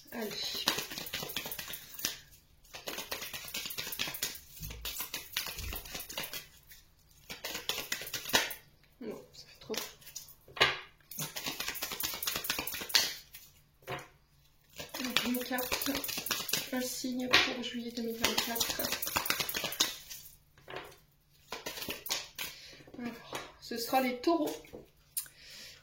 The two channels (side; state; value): both; identical; correlation 1.00